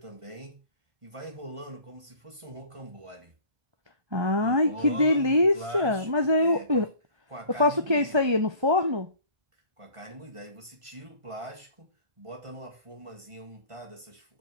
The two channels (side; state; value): left; late; 1.5 ms